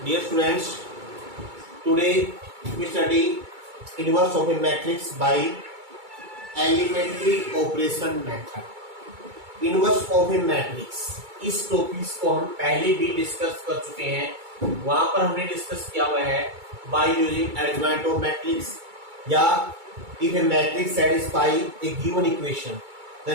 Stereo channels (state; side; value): late; left; 2.3 ms